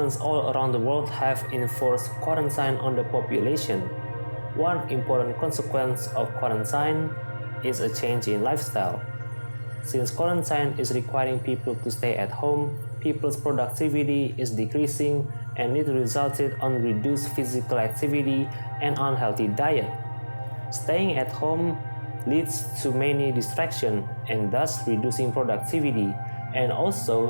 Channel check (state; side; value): inverted; both; correlation -1.00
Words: all around the world have enforced quarantine on the population. One important consequence of quarantine is a change in lifestyle. Since quarantine is requiring people to stay at home, people's productivity is decreasing and it resulted on reduced physical activity and unhealthy diet. Staying at home leads to many distractions and thus reducing productivity. And